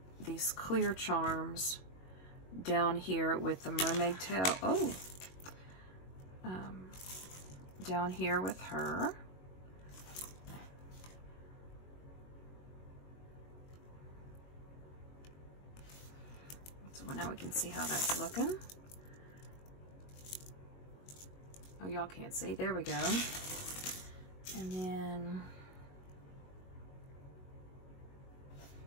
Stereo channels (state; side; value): late; right; 22 ms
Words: clear charms down here with the mermaid tail. Oh, down here with her. So now we can see how that's looking. Oh, y'all can't see. There we go. And then